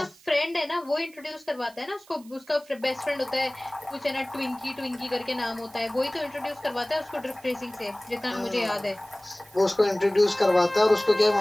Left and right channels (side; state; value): right; noise; hiss, 25 dB below the sound